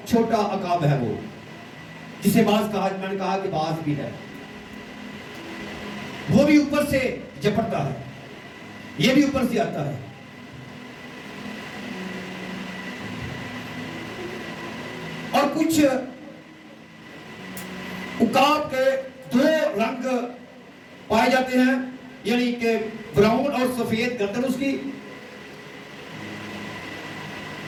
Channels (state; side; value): identical; both; correlation 1.00